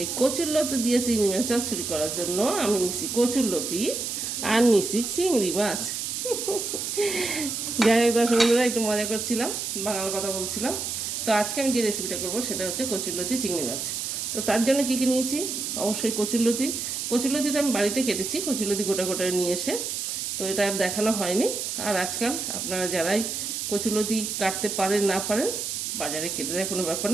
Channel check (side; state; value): right; noise; hiss, 3 dB below the sound